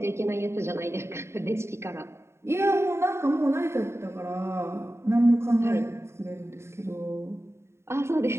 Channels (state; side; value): late; left; 0.13 ms